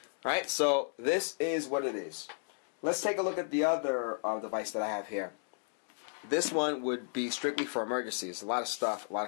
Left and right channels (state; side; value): silent; right; digital silence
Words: Alright, so this is what it is. Let's take a look at the other device that I have here. This one would be strictly for emergencies. A lot of stuff, a lot